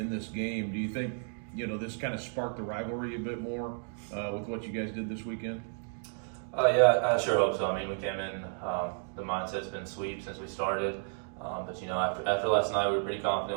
this game. Do you think, this kind of sparked the rivalry a bit more with what you guys did this weekend? Yeah, I sure hope so. I mean, we came in, the mindset's been sweep since we started. But after last night, we were pretty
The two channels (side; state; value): left; silent; 56 dB below the other